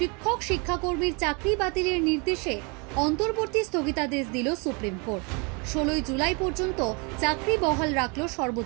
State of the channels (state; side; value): quieter; left; 31.6 dB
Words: শিক্ষাকর্মীর চাকরি বাতিলের নির্দেশে অন্তর্বর্তী স্থগিতাদেশ দিল সুপ্রিম কোর্ট। 16 জুলাই পর্যন্ত চাকরি বহাল রাখল